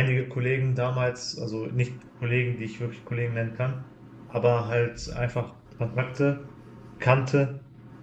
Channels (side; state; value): both; identical; correlation 1.00